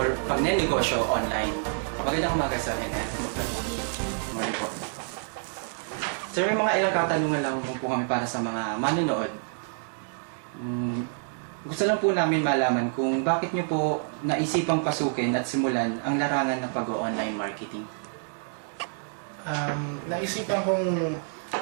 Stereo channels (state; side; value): silent; left; 58 dB below the other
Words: pagnenegosyo online. Magandang umaga sa akin, Morning po. Sir, may mga ilang katanungan lang po kami para sa mga manonood. Gusto lang po namin malaman kung bakit niyo po naisipang pasukin at simulan ang larangan ng pag-online marketing. Naisipan kong